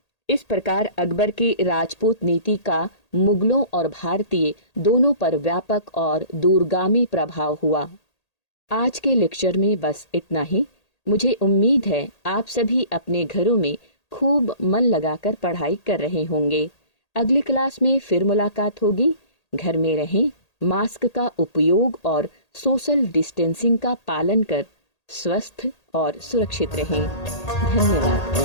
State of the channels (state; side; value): late; right; 1.8 ms